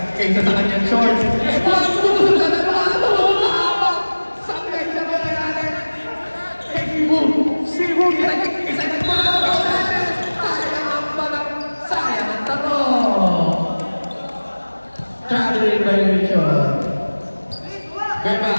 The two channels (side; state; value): both; inverted; correlation -1.00